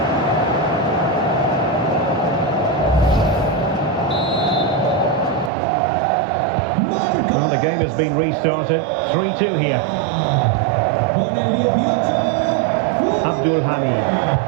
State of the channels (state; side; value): drops out; left; at 5.5 s